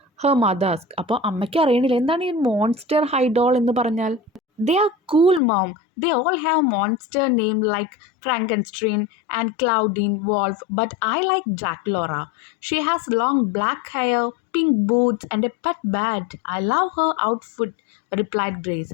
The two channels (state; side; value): drops out; right; at 5.4 s